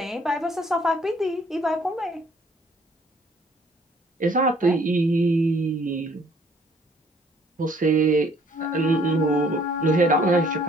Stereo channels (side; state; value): both; normal; correlation 0.60